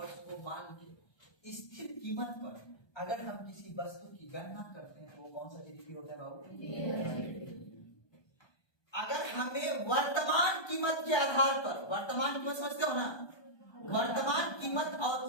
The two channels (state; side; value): late; right; 1.2 ms